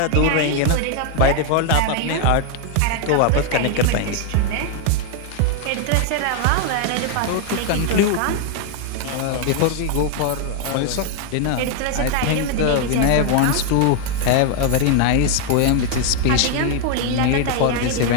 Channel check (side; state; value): both; different; correlation 0.00